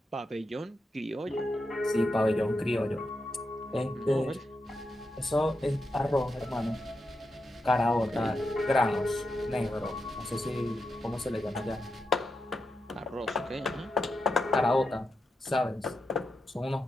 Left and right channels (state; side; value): normal; both; correlation 0.86